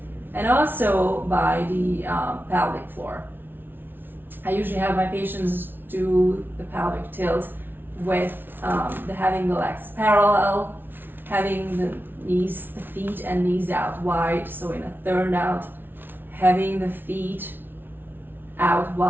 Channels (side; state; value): left; late; 0.099 ms